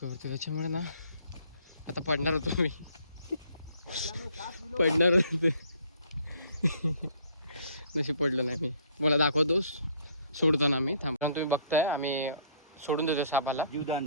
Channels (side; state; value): both; inverted; correlation -0.60